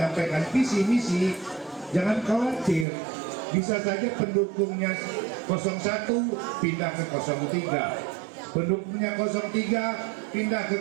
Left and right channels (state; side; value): drops out; left; at 2.9 s